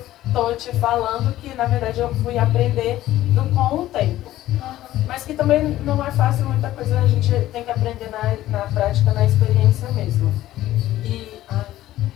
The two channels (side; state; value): right; quieter; 14.5 dB